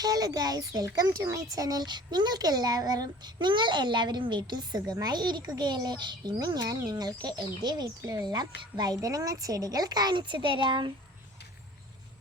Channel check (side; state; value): both; normal; correlation 0.46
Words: guys, welcome to my channel. നിങ്ങൾ എല്ലാവരും വീട്ടിൽ സുഖമായി ഇരിക്കുകയല്ലേ? ഇന്ന് ഞാൻ നിങ്ങൾക്ക് എൻ്റെ വീട്ടിലുള്ള വഴുതനങ്ങ ചെടികൾ കാണിച്ചു തരാം.